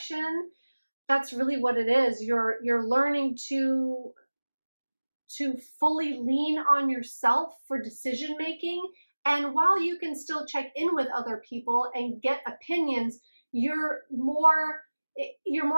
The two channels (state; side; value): inverted; both; correlation -1.00